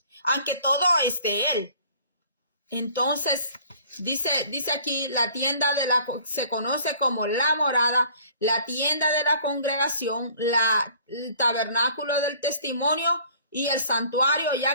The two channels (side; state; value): both; inverted; correlation -0.53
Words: aunque todo es de Él. Entonces, dice aquí, la tienda se conoce como la morada, la tienda de la congregación, el tabernáculo del testimonio y el santuario,